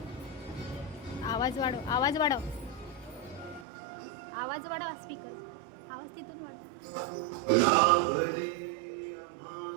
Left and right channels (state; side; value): drops out; left; at 3.7 s